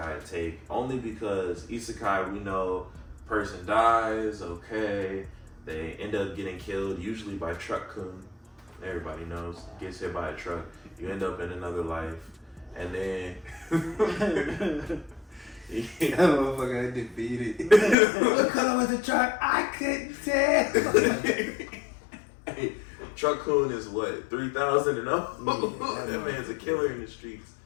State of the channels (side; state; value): right; drops out; at 17.9 s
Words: take, only because isekai, we know person dies, okay, they end up getting killed, usually by truck-kun. Everybody knows, gets hit by a truck, you end up in another life, and then that motherfucker got defeated. What color was the truck? I couldn't tell. Hey, Truck Coon is what, 3,000 and up? Yeah, that man's a killer in the streets.